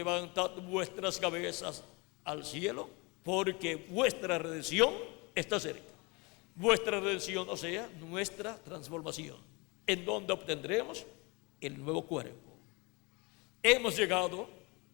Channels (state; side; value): quieter; right; 27.7 dB